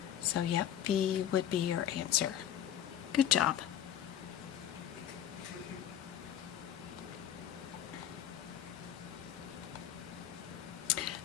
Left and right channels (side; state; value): right; quieter; 10.5 dB